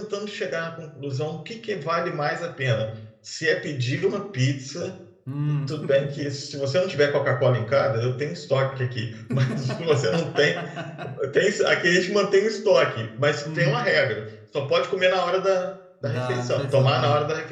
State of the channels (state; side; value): identical; both; correlation 1.00